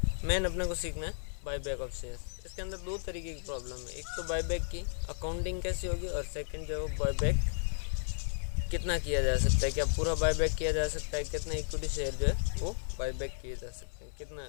मेन अपने को सीखना है बाय बैक ऑफ शेयर। इसके अंदर दो तरीके की प्रॉब्लम है, एक तो बाय बैक की अकाउंटिंग कैसी होगी और सेकंड जो है बाय बैक कितना किया जा सकता है, क्या पूरा बाय बैक किया जा सकता है, कितना इक्विटी शेयर जो है वो बाय बैक किए जा सकते हैं, कितना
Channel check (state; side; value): silent; right; 55 dB below the other